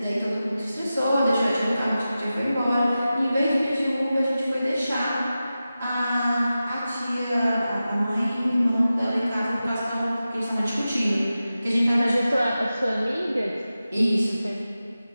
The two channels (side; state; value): both; inverted; correlation -0.93